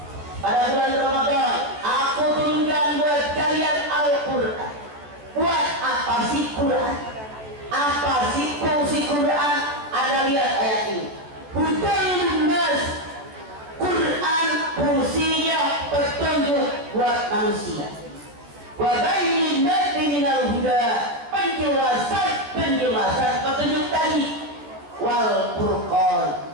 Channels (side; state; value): left; late; 14 ms